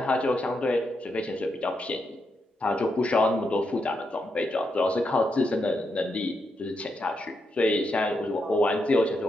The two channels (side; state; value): both; normal; correlation 0.83